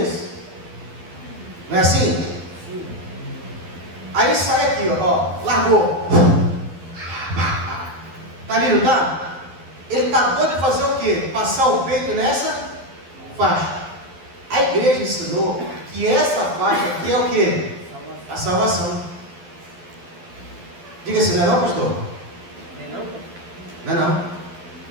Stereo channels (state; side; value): late; left; 12 ms